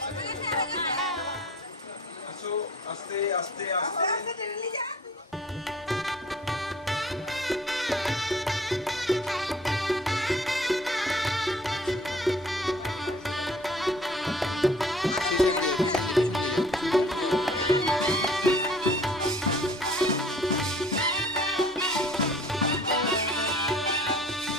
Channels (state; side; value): normal; both; correlation 0.51